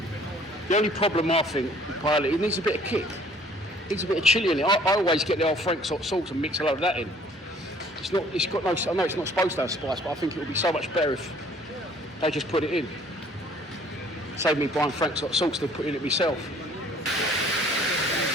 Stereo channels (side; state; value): both; normal; correlation 0.56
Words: The only problem I think with paella, it needs a bit of kick. It needs a bit of chilli in it. I always get the old Frank's hot sauce and mix a load of that in. It's got no, I know it's not supposed to have spice, but I think it would be so much better if they just put it in. Save me buying Frank's hot sauce to put in it myself.